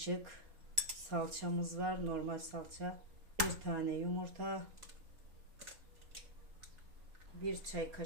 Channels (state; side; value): late; left; 3.9 ms